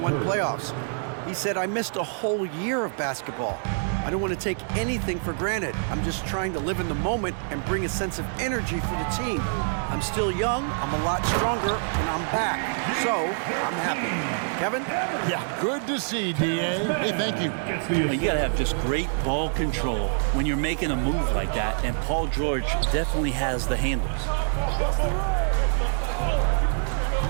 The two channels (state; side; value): silent; left; digital silence